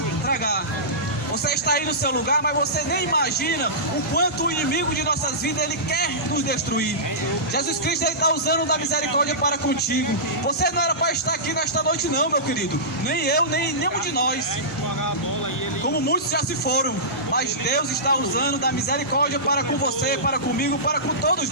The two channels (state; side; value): normal; both; correlation -0.19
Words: tragar. Você está aí no seu lugar, mas você nem imagina o quanto o inimigo de nossas vidas ele quer nos destruir. Jesus Cristo está usando da misericórdia para contigo. Você não era para estar aqui nesta noite não, meu querido. Nem eu, nem nenhum de nós. Como muitos já se foram. Mas Deus está usando da misericórdia para com você, para comigo, para com todos